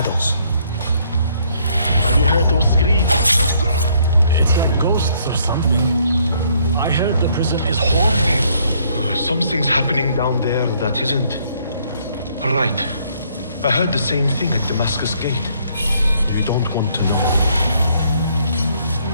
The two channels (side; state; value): both; inverted; correlation -0.67